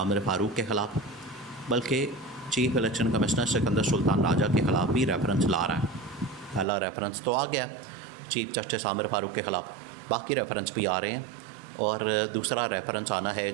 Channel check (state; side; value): drops out; left; at 6.7 s